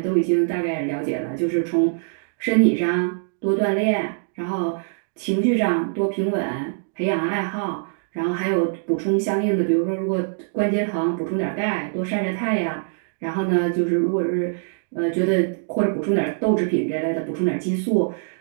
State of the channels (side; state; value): left; silent; digital silence